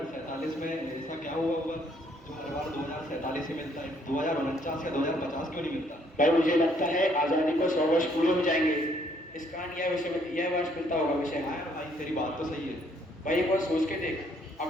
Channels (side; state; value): both; normal; correlation 0.66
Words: में ऐसा क्या हुआ होगा जो हर बार 2047 ही मिलता है? 2049 या 2050 क्यों नहीं मिलता? भाई मुझे लगता है आजादी को 100 वर्ष पूरे हो जाएंगे, इस कारण यह वर्ष मिलता होगा विषय। भाई तेरी बात तो सही है। भाई एक बार सोच के देख,